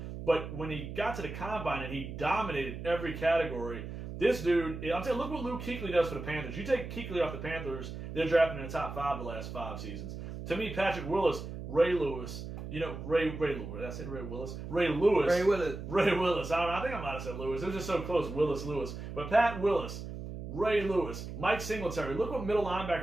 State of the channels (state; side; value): noise; right; hum, 8 dB below the sound